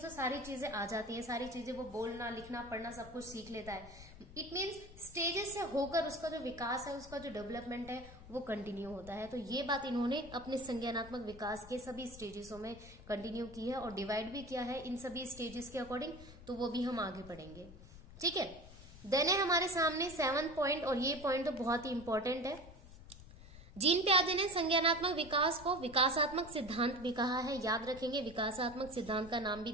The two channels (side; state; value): left; noise; rumble, 17 dB below the sound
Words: सारी चीजें आ जाती हैं, सारी चीजें वो बोलना लिखना पढ़ना सब कुछ सीख लेता है। इट मीन्स स्टेजेस से होकर उसका जो विकास है, उसका जो डेवलपमेंट है वो कंटिन्यू होता है। तो ये बात इन्होंने अपने संज्ञानात्मक विकास के सभी स्टेजेसों में कंटिन्यू की है और डिवाइड भी किया है इन सभी स्टेजेस के अकॉर्डिंग, तो वो भी हम आगे पढ़ेंगे। ठीक है, देन है हमारे सामने 7 पॉइंट, और ये पॉइंट तो बहुत ही इंपॉर्टेंट है। जीन पियाजे ने संज्ञानात्मक विकास को विकासात्मक सिद्धांत भी कहा है। याद रखेंगे, विकासात्मक सिद्धांत का नाम भी